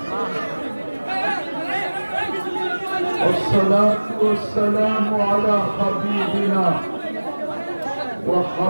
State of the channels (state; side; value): inverted; both; correlation -1.00